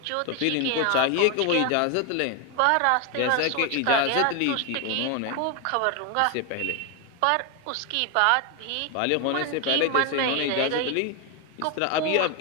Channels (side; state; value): both; different; correlation 0.01